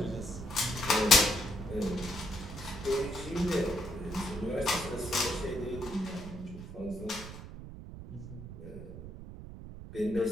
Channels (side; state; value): right; noise; rumble, 11 dB below the sound